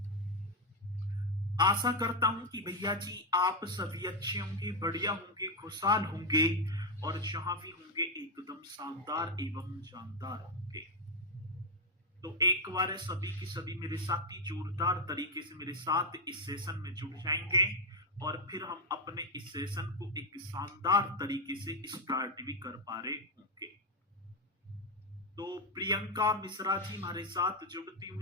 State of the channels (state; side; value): normal; both; correlation 0.04